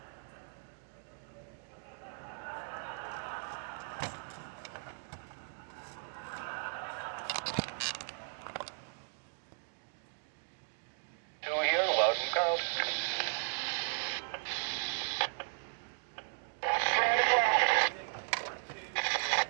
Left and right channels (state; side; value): silent; left; digital silence